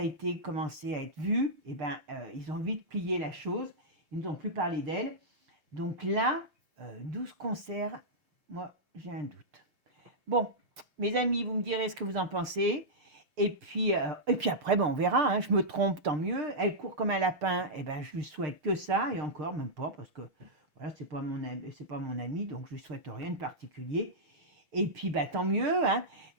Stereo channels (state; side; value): late; left; 6.6 ms